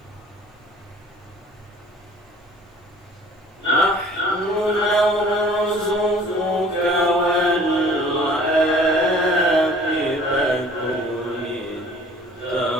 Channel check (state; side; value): normal; both; correlation 0.51